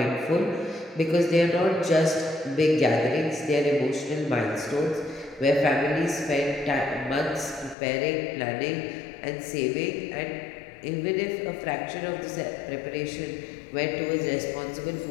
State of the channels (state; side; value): drops out; right; at 7.8 s